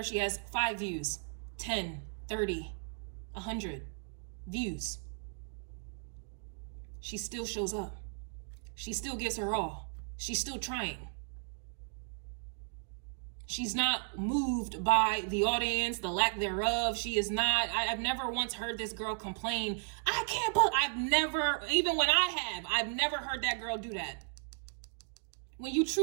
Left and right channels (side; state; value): left; silent; 54 dB below the other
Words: if she has 5 views, 10, 30, 100 views. She still shows up. She still gives her all. She's still trying. She's not moved by the audience, the lack thereof. She is not, I've never once heard this girl complain, I can't, but I've never, even when I've never heard that girl do that. When you